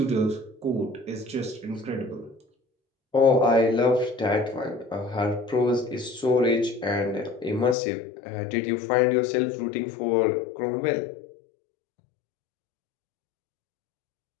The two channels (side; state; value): right; drops out; at 7.8 s